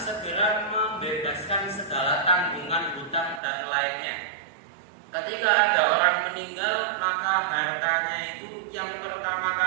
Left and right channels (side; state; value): left; drops out; at 3.4 s